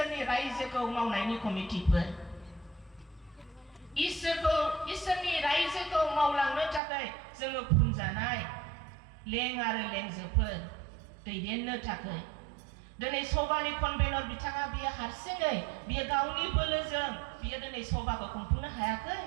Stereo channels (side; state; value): left; drops out; at 6.8 s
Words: रायजोखौ मावनायनि कमिटिफोर। इसोरनि रायजोखौ मावलांनो थाखाय जोङो फुनजानाय लें आरो लेंजोफोर दैदेननो थाखाय। दिनै सभानि कनभेनर बिथाङा बियो हारसिङै बियो गावनि बोलोजों बियो दिनै सभाखौ खुंफुंनो हायाखै,